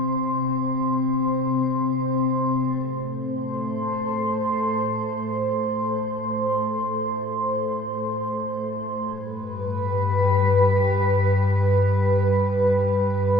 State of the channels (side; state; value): both; normal; correlation 0.52